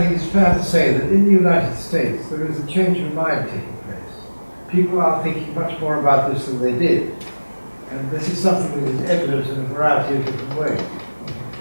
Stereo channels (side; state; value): both; inverted; correlation -1.00